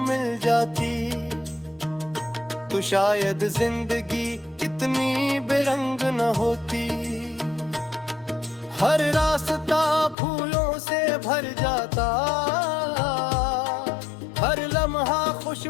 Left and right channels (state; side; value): drops out; right; at 10.2 s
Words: मिल जाती तो शायद जिंदगी इतनी बेरंग न होती। हर रास्ता फूलों से भर जाता, हर लम्हा